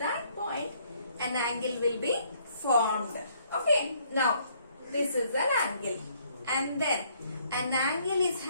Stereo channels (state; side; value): inverted; both; correlation -0.66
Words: point, an angle will be formed. Okay. Now, this is an angle. And then, an angle is